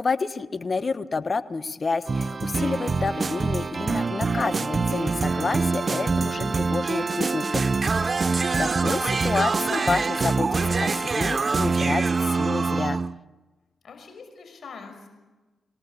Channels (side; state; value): both; normal; correlation 0.91